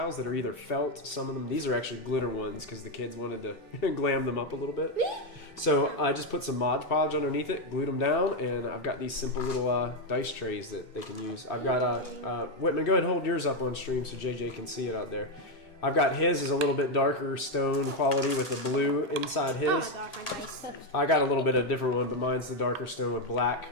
that are either felt, some of them, these are actually glitter ones because the kids wanted to glam them up a little bit. So I just put some Mod Podge underneath it, glued them down, and I've got these simple little dice trays that they can use. I've got, Whitman, go ahead and hold yours up on stream so JJ can see it out there. I've got his is a little bit darker stone quality with the blue inside his. Oh my god, my dice. I got a little bit of a different one, but mine's the darker stone with black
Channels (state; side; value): normal; both; correlation 0.05